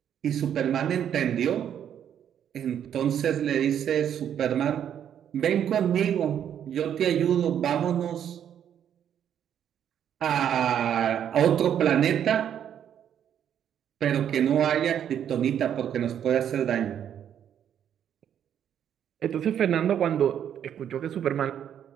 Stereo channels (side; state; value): left; quieter; 9.4 dB